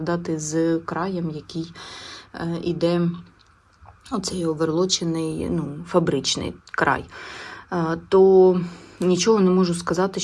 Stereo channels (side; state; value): both; identical; correlation 1.00